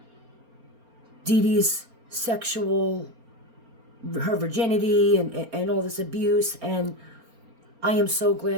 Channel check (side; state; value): left; late; 4.3 ms